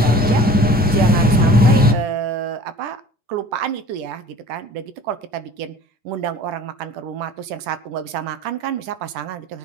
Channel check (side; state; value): both; normal; correlation 0.44